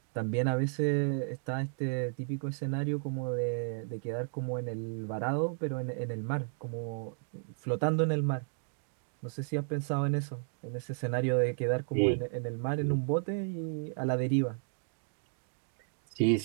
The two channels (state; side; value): silent; left; digital silence